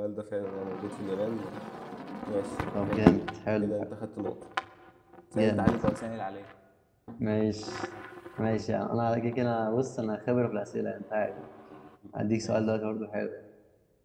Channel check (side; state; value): both; identical; correlation 1.00